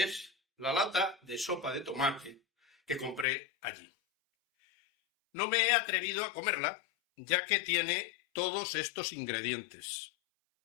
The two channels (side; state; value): right; drops out; at 3.2 s